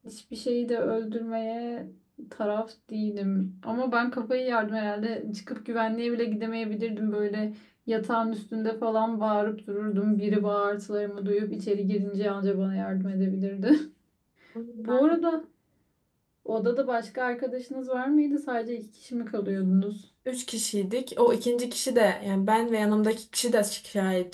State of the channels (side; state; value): both; identical; correlation 1.00